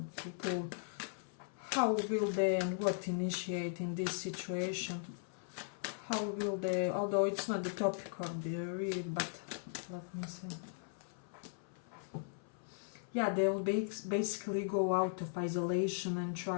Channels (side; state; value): right; silent; 52 dB below the other